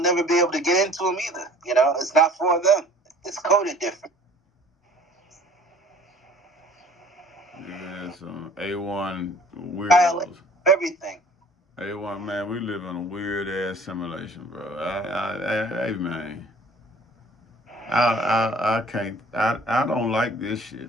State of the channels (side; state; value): both; normal; correlation 0.51